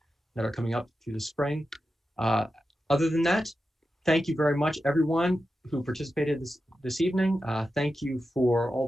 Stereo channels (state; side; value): normal; both; correlation 0.91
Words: are coming up through the spring. Other than that, thank you very much, everyone who participated this evening. Thank you for all